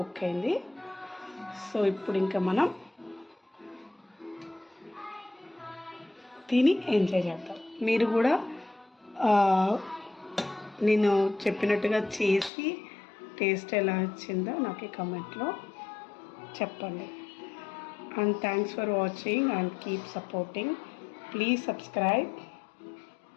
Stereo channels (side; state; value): right; drops out; at 12.5 s